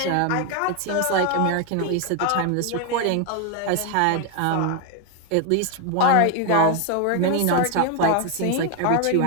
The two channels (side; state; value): both; different; correlation 0.01